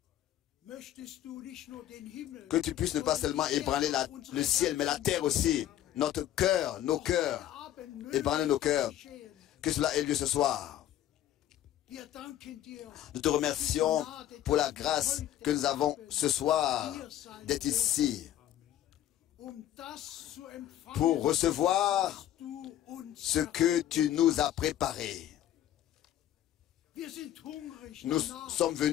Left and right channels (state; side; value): quieter; right; 12.2 dB